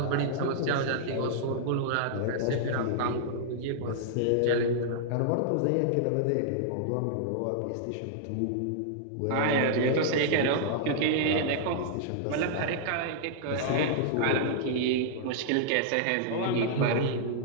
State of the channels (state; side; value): different; both; correlation -0.01